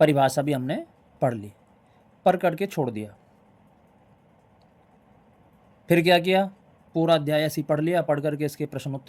परिभाषा भी हमने पढ़ ली, पढ़ करके छोड़ दिया। फिर क्या किया, पूरा अध्याय ऐसे ही पढ़ लिया, पढ़ करके इसके प्रश्न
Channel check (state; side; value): identical; both; correlation 1.00